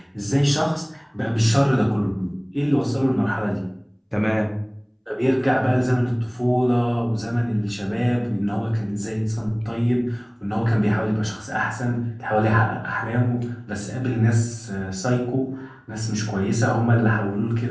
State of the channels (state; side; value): identical; both; correlation 1.00